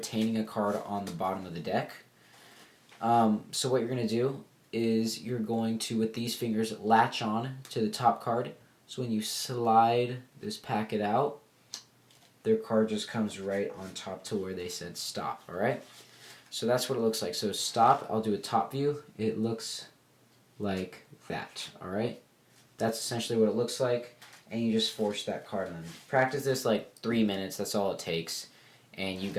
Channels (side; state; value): both; identical; correlation 1.00